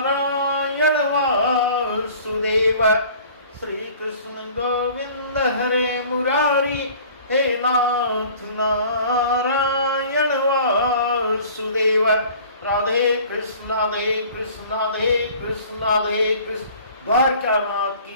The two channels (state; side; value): inverted; both; correlation -0.48